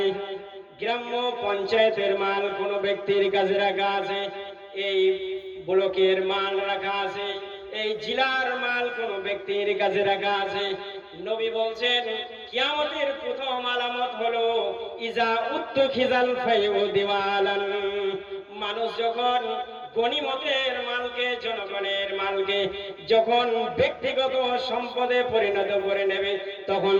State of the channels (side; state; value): both; identical; correlation 1.00